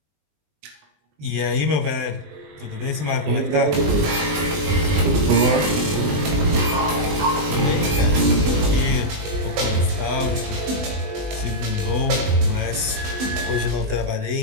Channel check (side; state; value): left; late; 20 ms